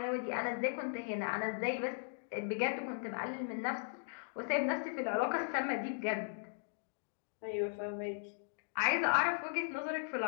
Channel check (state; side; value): silent; right; digital silence